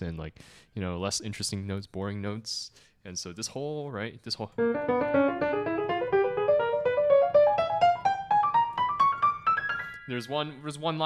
and like less interesting notes, boring notes. And so this whole there's one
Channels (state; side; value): identical; both; correlation 1.00